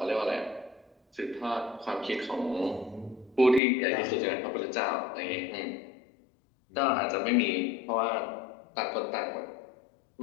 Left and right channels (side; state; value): right; drops out; at 3.6 s